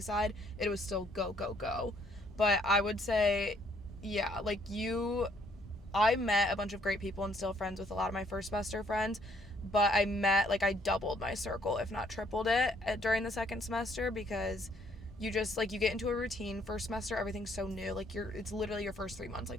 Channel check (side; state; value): both; normal; correlation 0.66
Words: It was still go, go, go. But I would say, yeah, I met a bunch of great people and still friends with a lot of my first semester friends. But I doubled my circle, if not tripled it, during the second semester, because you just, you get into a routine. First semester, everything's so new. It's literally your first 3 months,